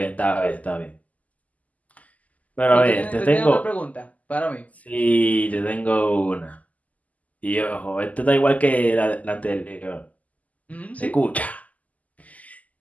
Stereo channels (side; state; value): right; late; 0.075 ms